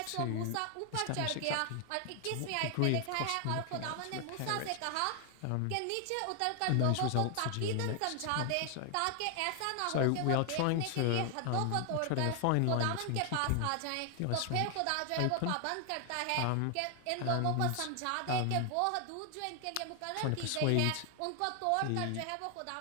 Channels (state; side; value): different; both; correlation 0.00